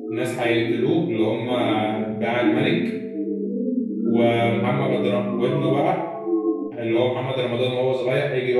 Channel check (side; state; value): both; identical; correlation 1.00